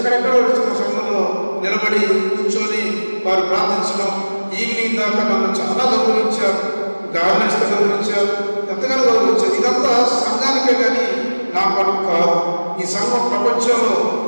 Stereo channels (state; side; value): inverted; both; correlation -1.00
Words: వచ్చి మన సంఘంలో నిలబడి కూర్చొని వారు ప్రార్థించడం, ఈవినింగ్ దాకా నన్ను చాలా గౌరవించారు, గార్డెన్స్తో గౌరవించారు, ఎంతగానో గౌరవించారు. ఇదంతా సంఘానికే కానీ నా పనులు కాదు. ఈ సంఘం ప్రపంచంలో